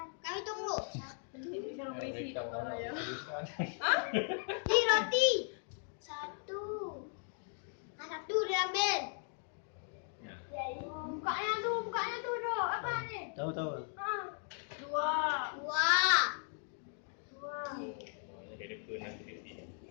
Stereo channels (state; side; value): silent; right; 53 dB below the other